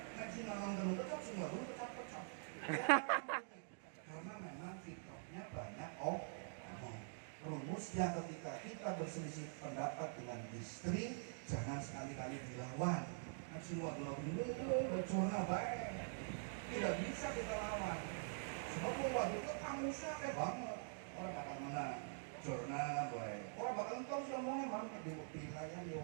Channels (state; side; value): silent; left; digital silence